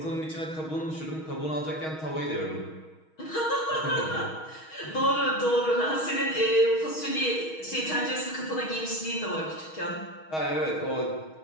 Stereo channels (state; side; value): late; right; 6.3 ms